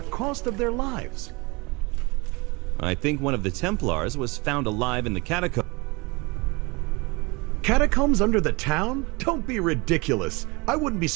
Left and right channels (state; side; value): quieter; left; 26.4 dB